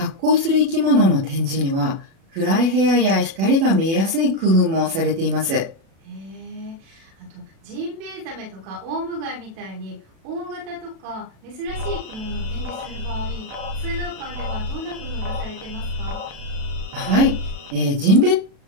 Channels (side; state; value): left; late; 36 ms